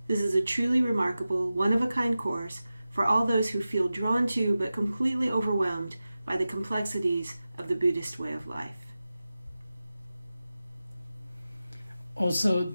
This is a truly remarkable, one-of-a-kind course for all those who feel drawn to but completely overwhelmed by the complexities of the Buddhist way of life. Also,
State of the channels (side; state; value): both; inverted; correlation -0.94